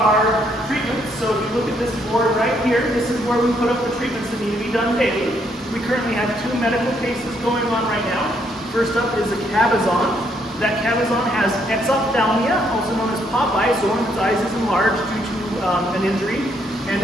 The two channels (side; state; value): both; normal; correlation 0.72